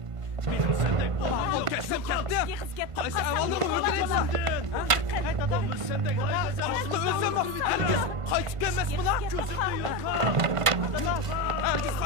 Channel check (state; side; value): late; left; 1.5 ms